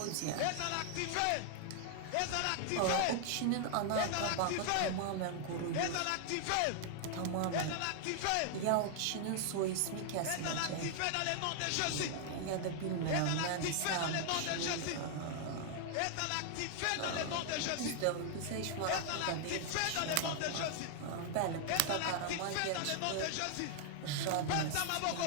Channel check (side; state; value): both; different; correlation 0.00